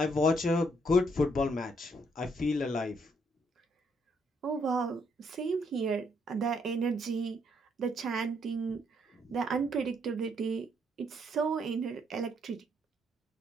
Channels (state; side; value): normal; both; correlation 0.72